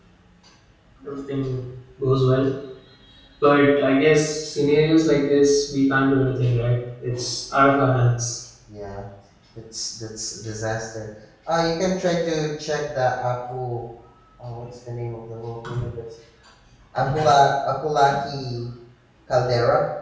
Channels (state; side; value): identical; both; correlation 1.00